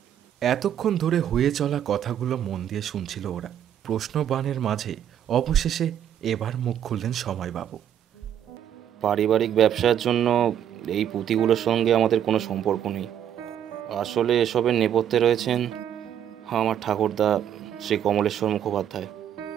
এতক্ষণ ধরে হয়ে চলা কথাগুলো মন দিয়ে শুনছিল ওরা। প্রশ্নবাণের মাঝে অবশেষে এবার মুখ খুললেন সময়বাবু। পারিবারিক ব্যবসার জন্য এই পুঁথিগুলোর সঙ্গে আমাদের কোনো সম্পর্ক নেই। আসলে এসবের নেপথ্যে রয়েছেন আমার ঠাকুরদা শ্রী কমলেশ্বর মুখোপাধ্যায়।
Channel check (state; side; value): quieter; left; 9.9 dB